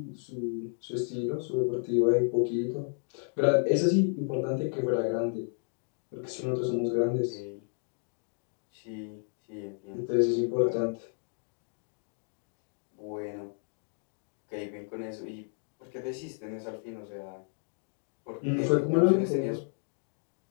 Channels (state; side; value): silent; right; 56 dB below the other